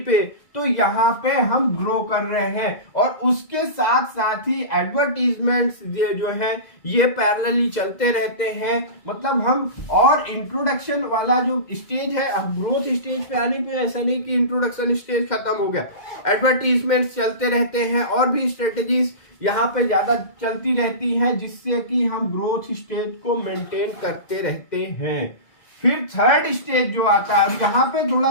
पे। तो यहाँ पे हम ग्रो कर रहे हैं और उसके साथ साथ ही एडवर्टीजमेंट्स जो है ये पैरेलली चलते रहते हैं। मतलब हम और इंट्रोडक्शन वाला जो स्टेज है, अब ग्रोथ स्टेज पे आने पे ऐसा नहीं कि इंट्रोडक्शन स्टेज खत्म हो गया, एडवर्टीजमेंट्स चलते रहते हैं और भी स्ट्रेटेजीज यहाँ पे ज्यादा चलती रहती हैं जिससे कि हम ग्रोथ स्टेज को मेंटेन करते रहते हैं। फिर थर्ड स्टेज जो आता है, यहाँ पे थोड़ा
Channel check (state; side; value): late; right; 2.0 ms